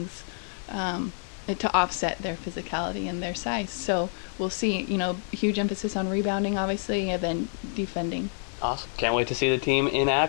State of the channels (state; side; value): silent; right; digital silence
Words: to offset their physicality and their size. So we'll see. Huge emphasis on rebounding, obviously, and then defending. Awesome. Can't wait to see the team in